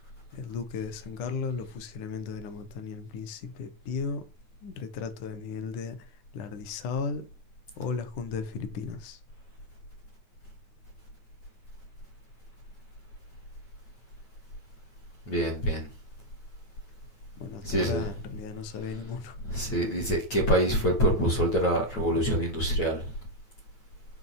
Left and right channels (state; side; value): late; right; 9.2 ms